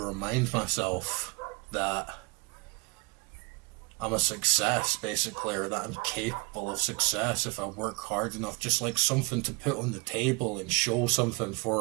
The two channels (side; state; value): left; quieter; 28.2 dB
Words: myself that I'm a success, basically, or that I'm capable of success if I work hard enough. Just like something to put on the table and show something